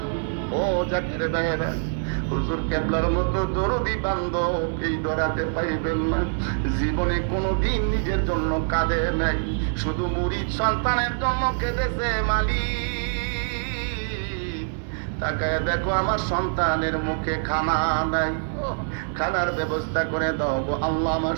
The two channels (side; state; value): left; silent; digital silence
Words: ও জাকের ভাইয়েরা, হুজুর কেবলার মতো দরদি বান্ধব এই দরাতে পাইবেন না। জীবনে কোনোদিন নিজের জন্য কাঁদে নাই, শুধু মুরিদ সন্তানের জন্য কেঁদেছে। মালিক তাকায় দেখো আমার সন্তানের মুখে খানা নাই, খানার ব্যবস্থা করে দাও গো আল্লাহ। আমার